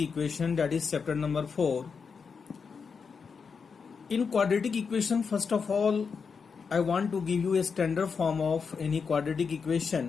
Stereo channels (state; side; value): quieter; right; 5.6 dB